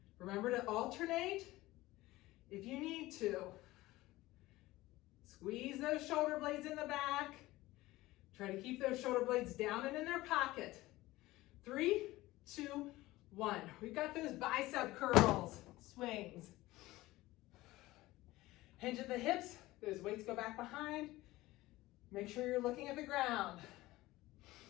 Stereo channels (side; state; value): right; quieter; 18.2 dB